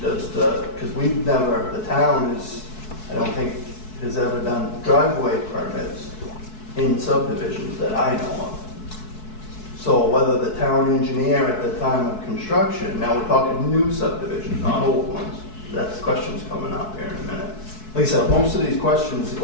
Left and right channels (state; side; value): late; right; 4.6 ms